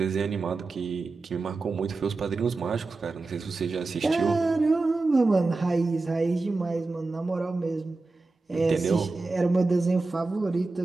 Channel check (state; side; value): quieter; left; 3.5 dB